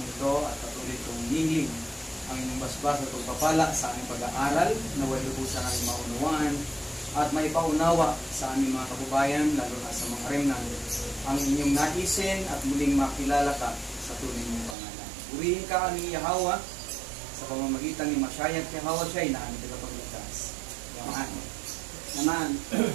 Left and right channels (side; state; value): left; drops out; at 14.8 s